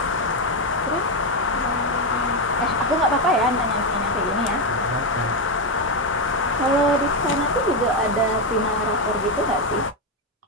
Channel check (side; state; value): both; normal; correlation 0.07